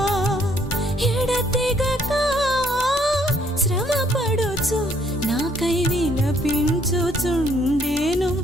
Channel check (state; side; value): normal; both; correlation 0.66